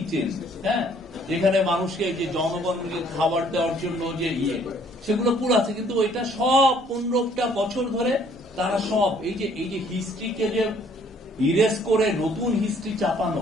হ্যাঁ, যেখানে মানুষকে যে জনগণকে খাবার দেওয়ার জন্য যে সেগুলো পুরো আছে, কিন্তু ওইটা সব ১৫টা বছর ধরে তারা সব এই যে হিস্ট্রিকে যে ইরেজ করে নতুন হিস্ট্রি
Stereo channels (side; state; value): both; normal; correlation 0.61